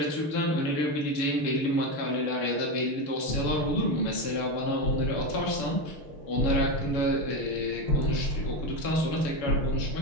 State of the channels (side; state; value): right; late; 6.9 ms